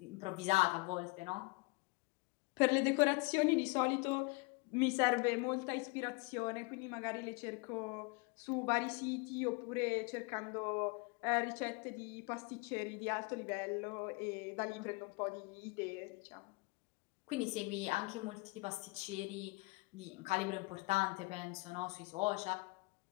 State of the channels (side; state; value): right; quieter; 27.6 dB